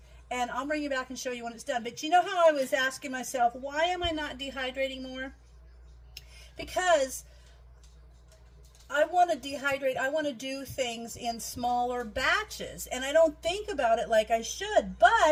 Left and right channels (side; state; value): both; identical; correlation 1.00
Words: and I'll bring you back and show you when it's done. But you know how I was asking myself, why am I not dehydrating more? Because I want to dehydrate, I want to do things in smaller batches, and I don't think about it like I should,